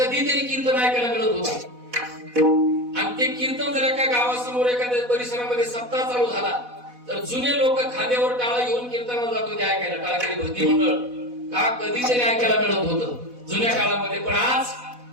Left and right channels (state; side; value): late; left; 4.1 ms